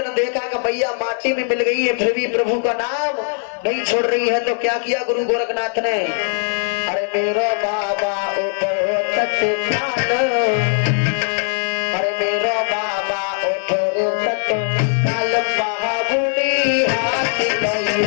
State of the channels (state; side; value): silent; right; 56 dB below the other